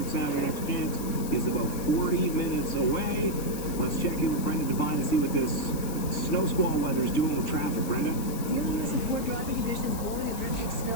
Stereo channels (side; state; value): left; noise; hiss, 12 dB below the sound